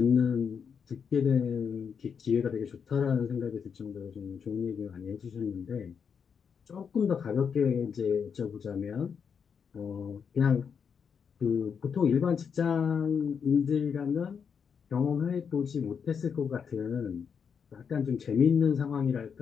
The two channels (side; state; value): right; quieter; 6.7 dB